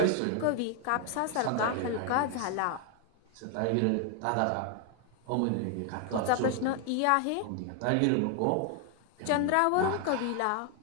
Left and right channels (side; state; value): both; different; correlation 0.00